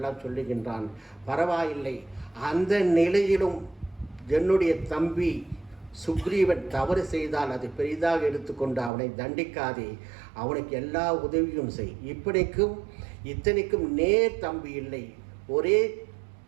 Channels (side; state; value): left; drops out; at 8.9 s